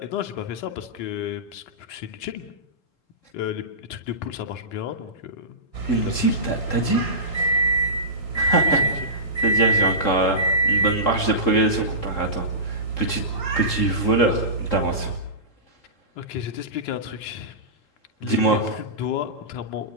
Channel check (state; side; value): late; right; 3.7 ms